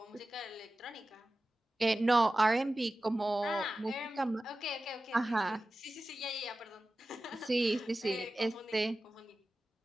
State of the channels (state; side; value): normal; both; correlation 0.95